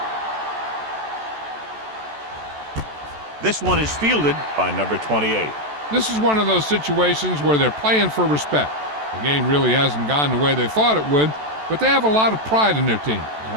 one. This one is fielded by number 28. This is one of those situations where they're playing for respect. The game really hasn't gone the way they thought it would, but they have a lot of pride in their team.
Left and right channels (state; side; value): late; left; 14 ms